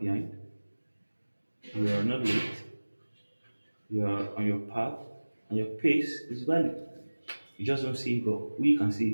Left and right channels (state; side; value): inverted; both; correlation -1.00